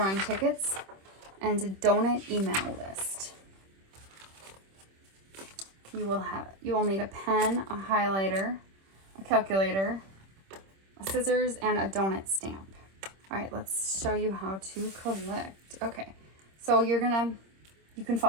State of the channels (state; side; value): late; left; 26 ms